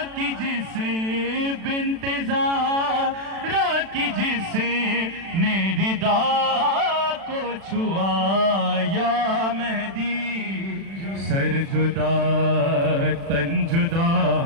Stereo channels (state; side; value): late; left; 36 ms